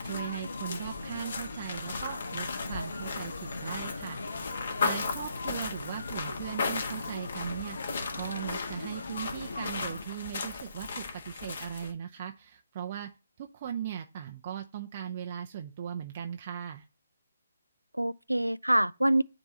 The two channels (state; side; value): inverted; both; correlation -0.80